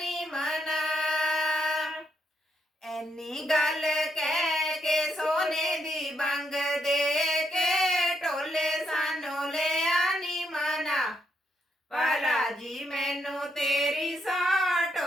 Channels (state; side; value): normal; both; correlation 0.79